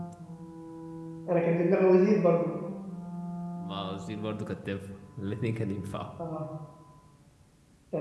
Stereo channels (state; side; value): identical; both; correlation 1.00